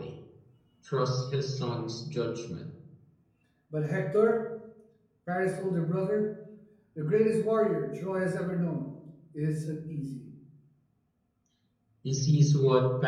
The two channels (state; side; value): identical; both; correlation 1.00